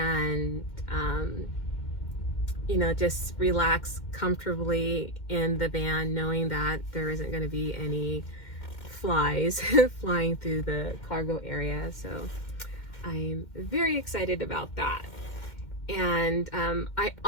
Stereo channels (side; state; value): right; late; 2.1 ms